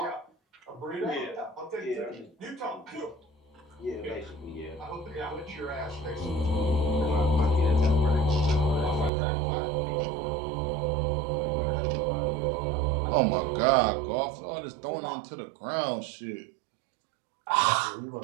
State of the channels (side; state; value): left; drops out; at 9.1 s